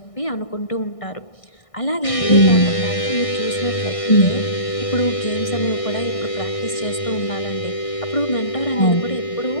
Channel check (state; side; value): late; right; 1.6 ms